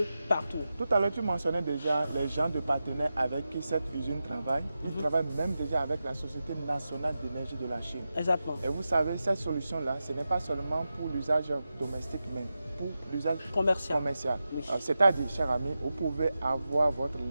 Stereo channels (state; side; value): inverted; both; correlation -0.91